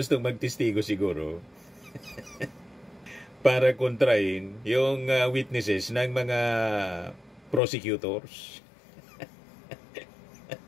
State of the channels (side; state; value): right; drops out; at 7.6 s